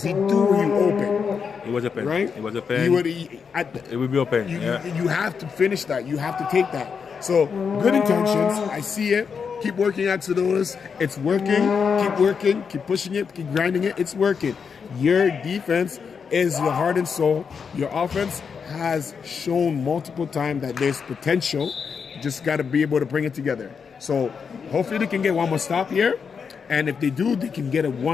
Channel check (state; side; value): quieter; right; 6.1 dB